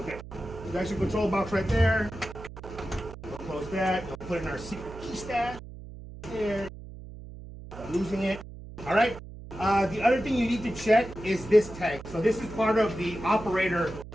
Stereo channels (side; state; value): right; noise; hum, 14 dB below the sound